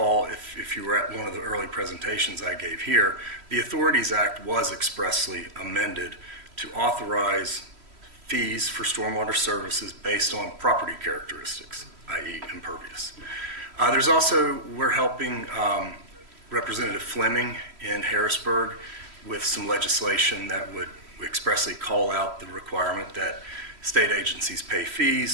if you were at one of the early presentations I gave here, the Authorities Act was expressly amended to authorize fees for stormwater services based on property characteristics, i.e. impervious. There's also, we're helping Representative Fleming in Harrisburg with some legislation that would expressly call out the requirement that state agencies pay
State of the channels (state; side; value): late; left; 3.1 ms